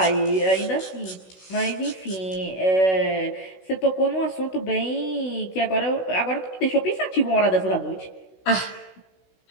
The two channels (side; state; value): right; late; 16 ms